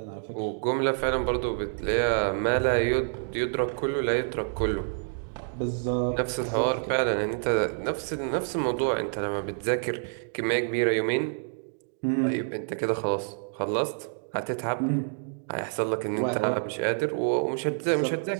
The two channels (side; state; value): left; silent; digital silence